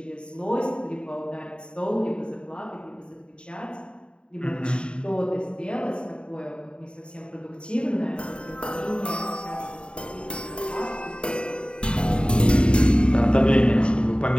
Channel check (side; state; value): right; late; 0.053 ms